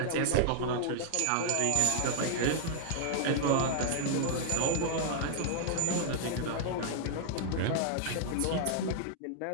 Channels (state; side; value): different; both; correlation 0.00